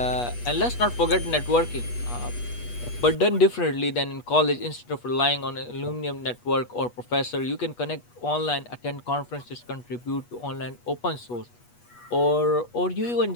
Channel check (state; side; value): late; right; 8.3 ms